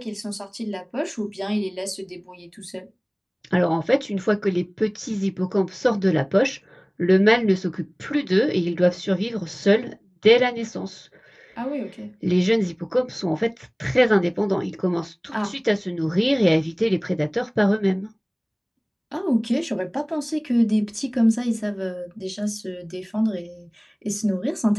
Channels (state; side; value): identical; both; correlation 1.00